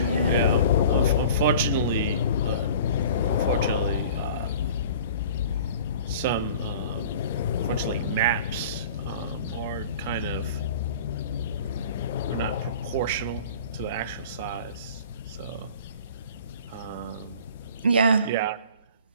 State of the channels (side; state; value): both; inverted; correlation -0.45